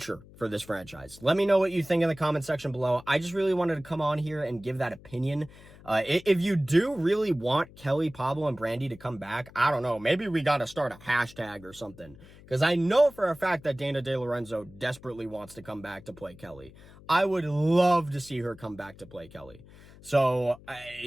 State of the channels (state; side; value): noise; left; hum, 21 dB below the sound